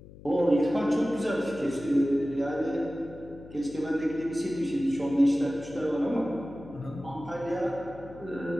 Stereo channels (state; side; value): noise; left; hum, 18 dB below the sound